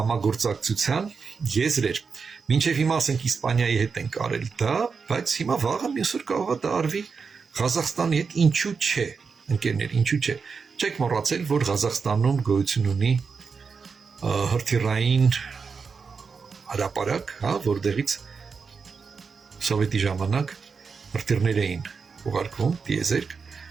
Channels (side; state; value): left; quieter; 5.3 dB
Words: եզրեր։ Մինչև հիմա ասենք Իսպանիայի հետ ենք արել դա, բայց հիմա վաղը մյուսօր կարող է դա արվի Ղազախստանի հետ, ինչու՞ չէ, ընկերներ, ինչու՞ չէ։ Չեք մոռացել, որ Ղազախստանում գոյություն ունի հրթիռային հրապարակ, հա, որտեղից սովետի ժամանակ հրթիռներ էին ուղարկվում, տիեզերք։